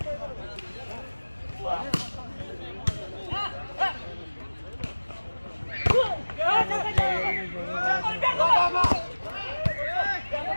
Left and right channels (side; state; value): both; inverted; correlation -1.00